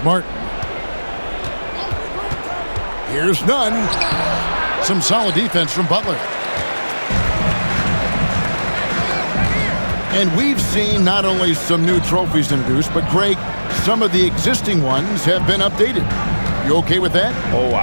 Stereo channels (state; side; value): inverted; both; correlation -1.00